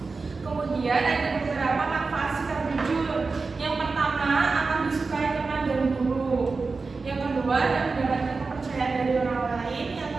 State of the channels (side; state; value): left; quieter; 4.2 dB